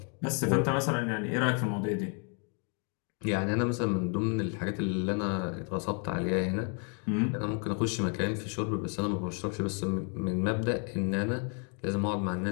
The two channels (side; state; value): right; quieter; 39.9 dB